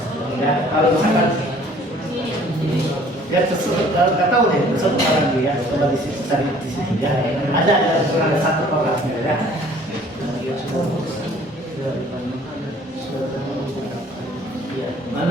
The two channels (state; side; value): normal; both; correlation 0.54